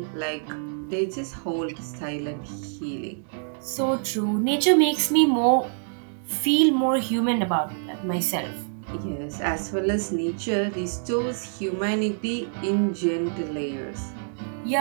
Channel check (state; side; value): silent; left; digital silence